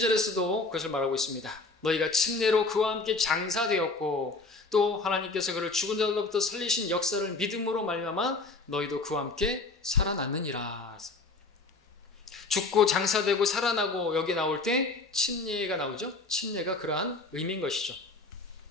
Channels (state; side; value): quieter; right; 3.5 dB